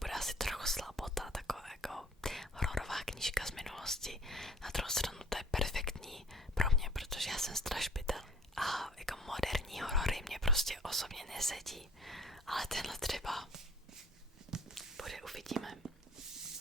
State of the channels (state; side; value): normal; both; correlation 0.50